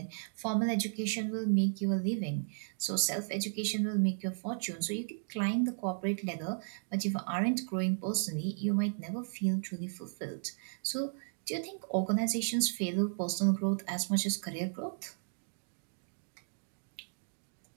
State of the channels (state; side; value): silent; left; digital silence